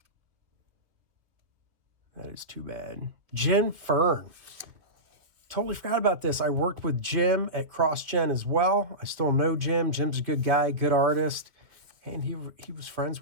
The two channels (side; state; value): left; late; 2.7 ms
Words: That is too bad. Jim Fern. Totally forgot about this. I worked with Jim at CrossGen as well. I still know Jim. Jim's a good guy, good artist. And he was friends